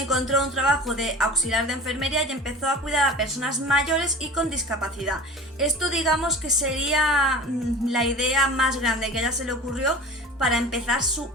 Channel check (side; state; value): both; normal; correlation 0.37